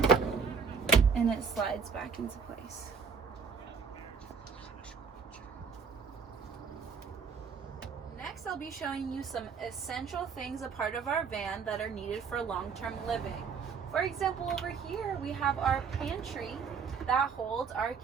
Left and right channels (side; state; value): left; quieter; 5.8 dB